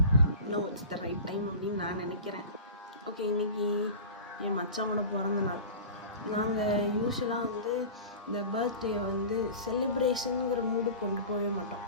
No, it's the right time அப்படின்னு நான் நினைக்கிறேன். ஓகே, இன்றைக்கி என் மச்சானோட பிறந்த நாள். நாங்கள் யூஸ்வலாக வந்து இந்த பர்த்டே வந்து செலிப்ரேஷனுங்கிற மூடு கொண்டு போகவே மாட்டோம்.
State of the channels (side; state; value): both; inverted; correlation -0.36